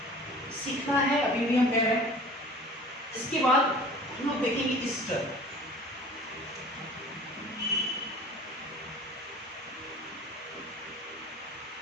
सीखना है अभी भी हम कह रहे हैं। इसके बाद हम लोग देखेंगे ईस्टर।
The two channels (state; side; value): normal; both; correlation 0.44